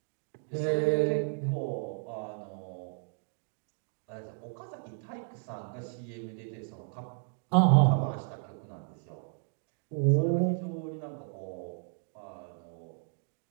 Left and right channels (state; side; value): silent; left; 56 dB below the other